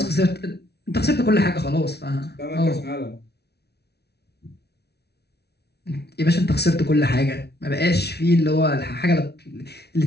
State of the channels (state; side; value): late; right; 0.48 ms